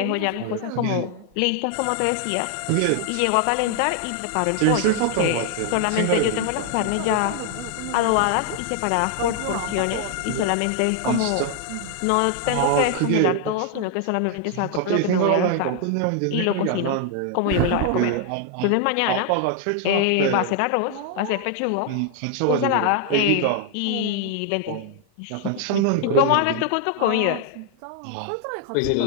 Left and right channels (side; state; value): both; different; correlation 0.00